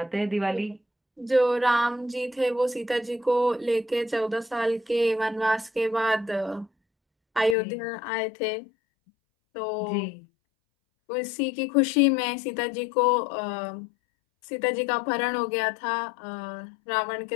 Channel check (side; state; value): right; drops out; at 7.6 s